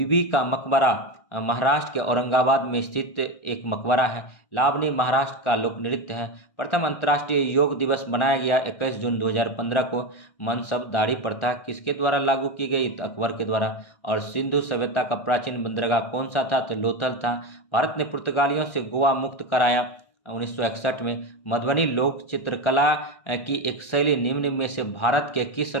का मकबरा महाराष्ट्र के औरंगाबाद में स्थित एक मकबरा है। लावनी महाराष्ट्र का लोक नृत्य है। प्रथम अंतर्राष्ट्रीय योग दिवस मनाया गया 21 जून 2015 को। मनसब दाढ़ी प्रथा किसके द्वारा लागू की गई? तो अकबर के द्वारा। और सिंधु सभ्यता का प्राचीन बंदरगाह कौन सा था? तो लोथल था। भारत ने पुर्तगालियों से गोवा मुक्त कराया 1961 में। मधुबनी लोक चित्रकला की एक शैली निम्न में से भारत के किस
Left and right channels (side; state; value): right; late; 1.4 ms